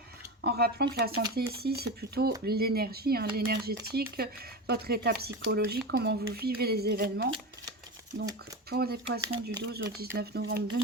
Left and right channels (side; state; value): both; normal; correlation 0.22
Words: En rappelant que la santé ici, c'est plutôt l'énergie, hein, l'énergétique, votre état psychologique, comment vous vivez les événements. Donc, pour les poissons du 12 au 19 novembre